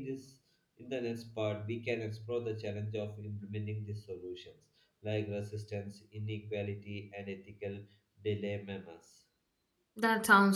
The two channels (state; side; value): identical; both; correlation 1.00